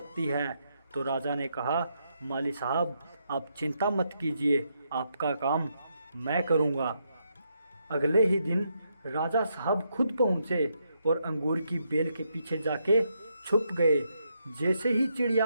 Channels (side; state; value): both; inverted; correlation -0.79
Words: है। तो राजा ने कहा, माली साहब आप चिंता मत कीजिए, आपका काम मैं करूँगा। अगले ही दिन राजा साहब खुद पहुँचे और अंगूर की बेल के पीछे जाके छुप गए। जैसे ही चिड़िया